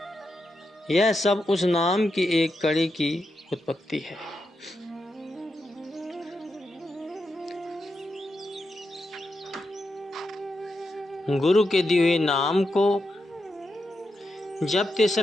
यह सब उस नाम की एक कड़ी की उत्पत्ति है। गुरु के दिए हुए नाम को जपते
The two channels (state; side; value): normal; both; correlation 0.86